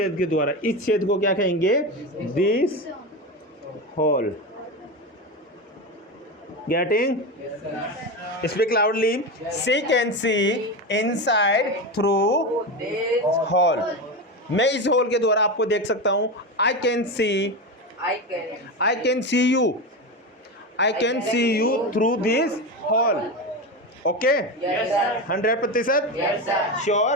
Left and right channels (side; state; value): both; normal; correlation 0.19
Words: के द्वारा। इस छेद को क्या कहेंगे? This hole. Getting? Speak loudly. She can see inside through hole. मैं इस होल के द्वारा आपको देख सकता हूं। I can see you, I can see you through this hole. Okay, 100%